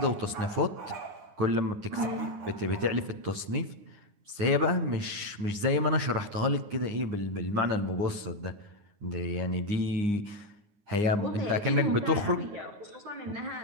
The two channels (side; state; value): left; late; 9.7 ms